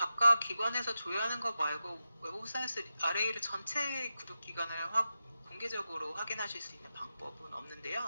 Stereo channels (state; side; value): inverted; both; correlation -0.91